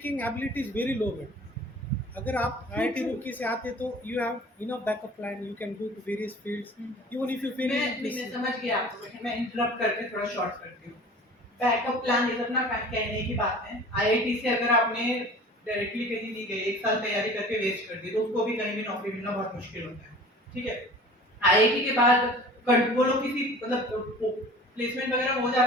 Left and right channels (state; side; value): normal; both; correlation 0.44